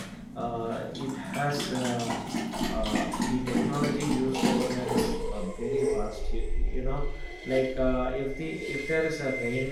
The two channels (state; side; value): identical; both; correlation 1.00